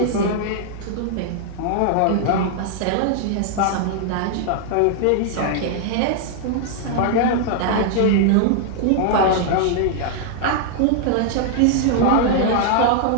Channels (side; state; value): both; different; correlation -0.01